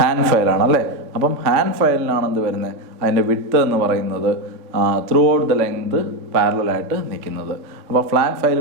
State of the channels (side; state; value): left; late; 3.5 ms